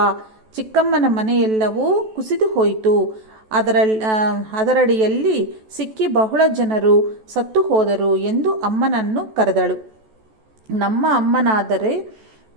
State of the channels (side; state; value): left; late; 14 ms